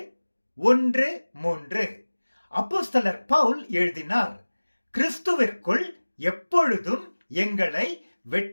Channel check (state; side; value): inverted; both; correlation -1.00